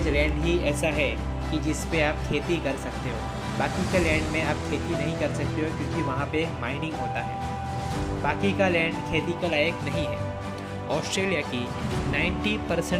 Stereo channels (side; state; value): both; identical; correlation 1.00